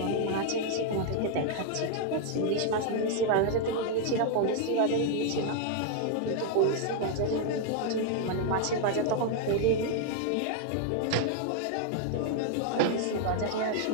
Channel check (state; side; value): different; both; correlation 0.00